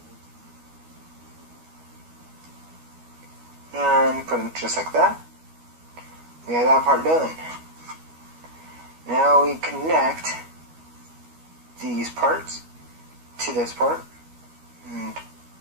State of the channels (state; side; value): late; left; 12 ms